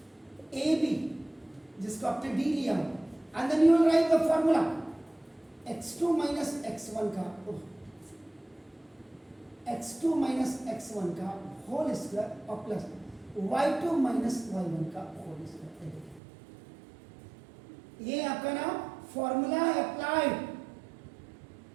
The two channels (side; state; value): left; drops out; at 16.2 s